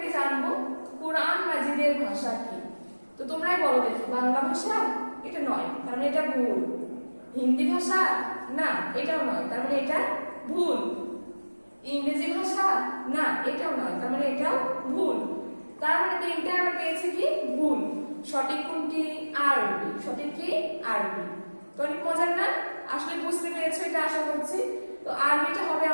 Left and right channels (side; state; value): both; inverted; correlation -1.00